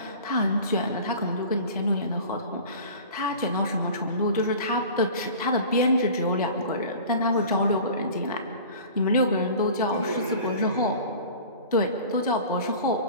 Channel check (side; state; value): both; inverted; correlation -0.40